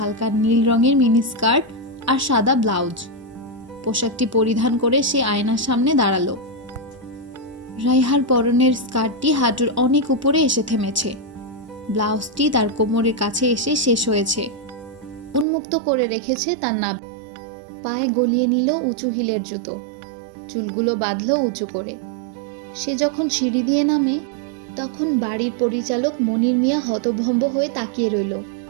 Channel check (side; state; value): left; drops out; at 15.5 s